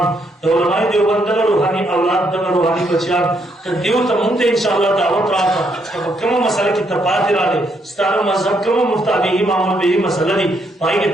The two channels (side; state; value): both; normal; correlation 0.75